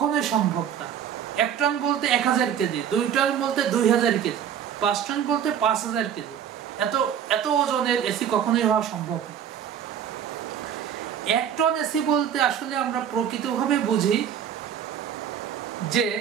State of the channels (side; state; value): left; quieter; 8.9 dB